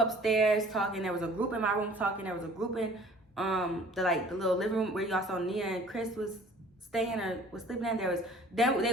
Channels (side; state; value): both; normal; correlation 0.51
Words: talking. There was a group in my room talking. There was a group in the little living room where y'all saw Nia and Chris was staying or was sleeping in.